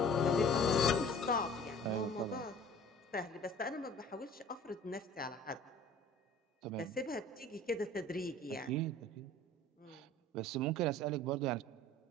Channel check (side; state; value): both; normal; correlation 0.47